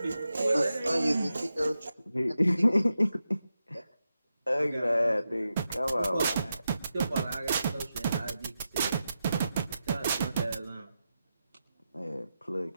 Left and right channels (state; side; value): inverted; both; correlation -0.89